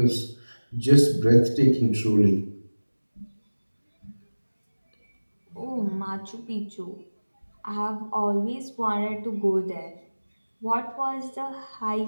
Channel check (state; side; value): inverted; both; correlation -1.00